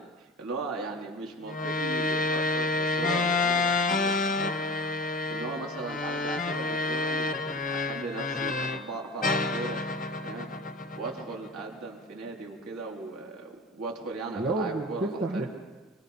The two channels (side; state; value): both; normal; correlation 0.34